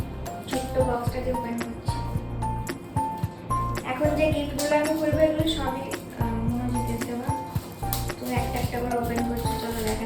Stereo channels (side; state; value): both; identical; correlation 1.00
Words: ছোট্ট বক্সটাকে ওপেন করছি। এখন যে গিফটগুলো আমি করবো এগুলো সবই মহাজিতের দেওয়া। তো একটা একটা করে ওপেন করছি, চলো